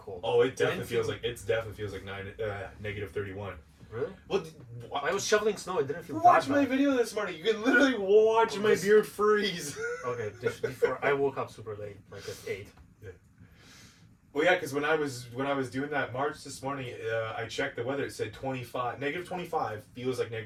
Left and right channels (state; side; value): identical; both; correlation 1.00